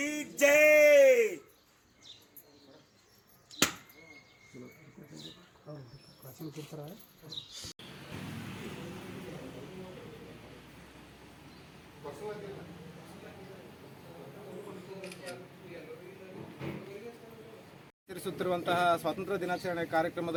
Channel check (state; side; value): identical; both; correlation 1.00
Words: ಜೈ. ಆಚರಿಸುತ್ತಿರುವಂತಹ ಸ್ವಾತಂತ್ರ್ಯ ದಿನಾಚರಣೆ